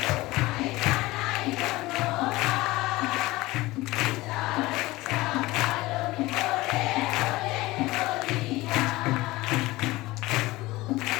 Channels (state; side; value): quieter; right; 19.6 dB